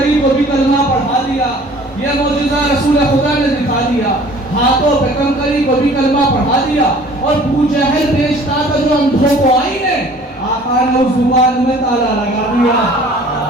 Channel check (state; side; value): normal; both; correlation 0.50